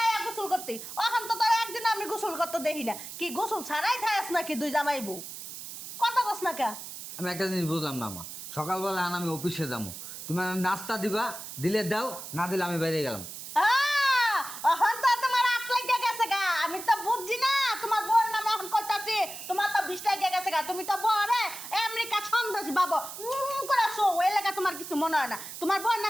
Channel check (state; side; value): noise; right; hiss, 10 dB below the sound